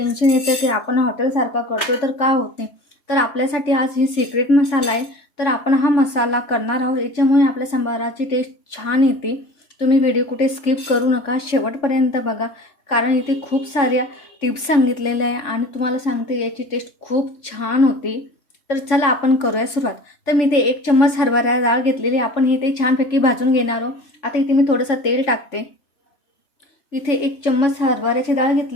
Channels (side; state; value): right; late; 3.5 ms